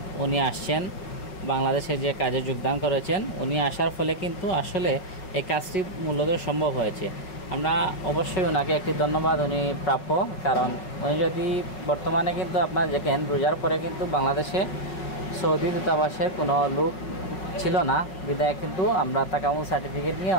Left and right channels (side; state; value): right; late; 5.4 ms